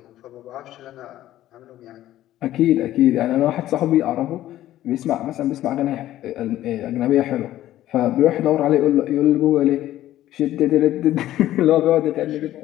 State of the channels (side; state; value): right; quieter; 13.8 dB